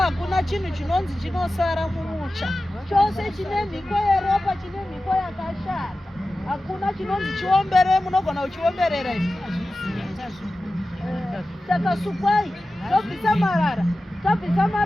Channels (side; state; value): both; normal; correlation 0.95